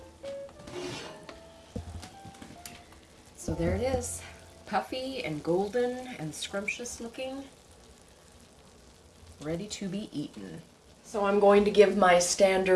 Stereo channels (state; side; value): identical; both; correlation 1.00